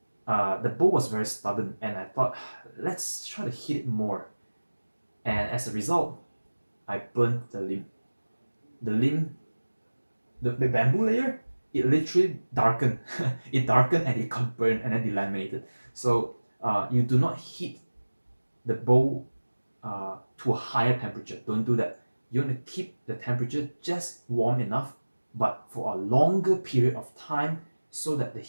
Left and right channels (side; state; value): both; inverted; correlation -1.00